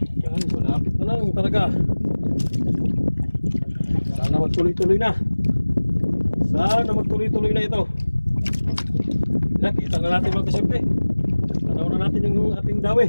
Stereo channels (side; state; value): both; inverted; correlation -1.00